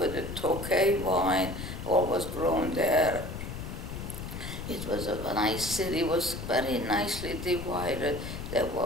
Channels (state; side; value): noise; left; rumble, 8 dB below the sound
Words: a Tokay vine, all was grown there. It was a nice city. It was very nicely divided. There